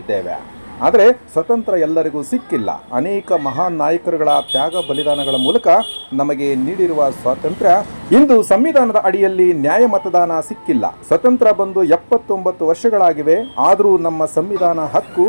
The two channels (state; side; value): inverted; both; correlation -1.00